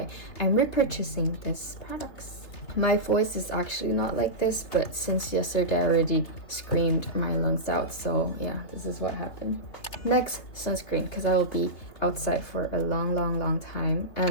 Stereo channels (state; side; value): late; right; 3.5 ms